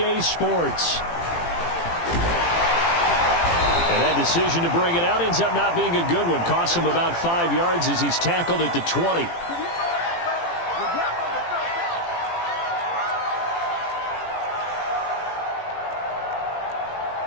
Sports. And that decision to bring it out ends up not being a good one. Costs him about 5 yards as he's tackled at the 20.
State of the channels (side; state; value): right; late; 18 ms